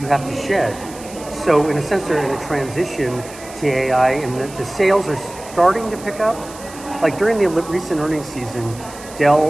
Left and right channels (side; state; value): right; noise; hiss, 17 dB below the sound